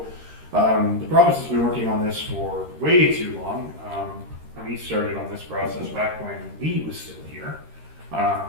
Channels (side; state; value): left; late; 13 ms